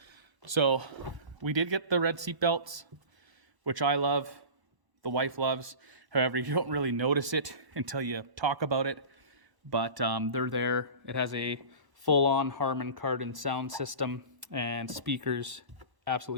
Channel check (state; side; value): late; left; 1.0 ms